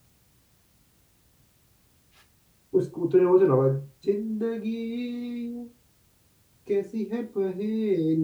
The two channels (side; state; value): both; identical; correlation 1.00